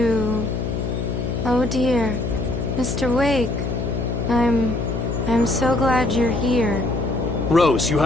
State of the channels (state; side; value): noise; left; hum, 2 dB below the sound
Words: Oh dear, Mr. Wake. I'm so glad you're here. Rose, you